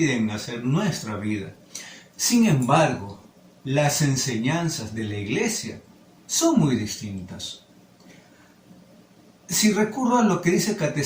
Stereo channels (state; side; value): identical; both; correlation 1.00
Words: hacer nuestra vida. Sin embargo, las enseñanzas de la Iglesia son muy distintas. Si recurro a lo que dice el